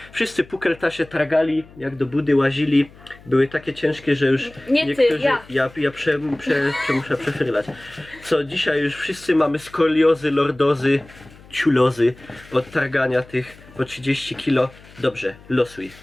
Wszyscy pukel Tasie tragali, jak do budy łazili, były takie ciężkie, że już Nie ty, niektórzy... ja. Muszę przefrylać. Co dzisiaj już wszyscy mamy skoliozy, lordozy, ciulozy od targania tych po 30 kilo. Dobrze, losuj.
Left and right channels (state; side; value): noise; left; hum, 23 dB below the sound